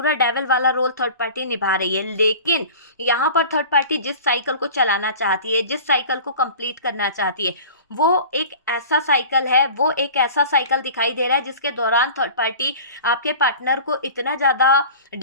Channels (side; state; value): both; inverted; correlation -0.40